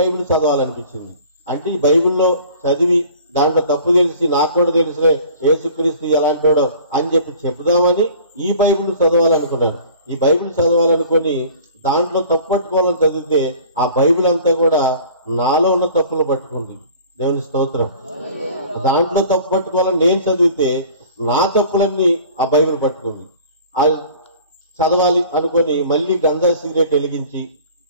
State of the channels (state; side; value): inverted; both; correlation -0.47